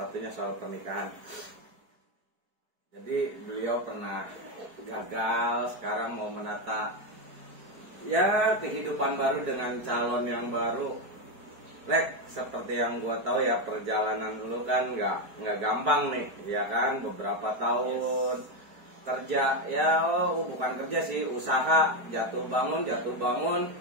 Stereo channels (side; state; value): left; late; 4.5 ms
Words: soal pernikahan. Jadi beliau pernah gagal, sekarang mau menata ya kehidupan baru dengan calon yang baru. Lek, seperti yang gua tahu ya, perjalanan dulu kan nggak gampang nih, ya kan, beberapa tahun kerja, ya bukan kerja sih, usaha, jatuh bangun,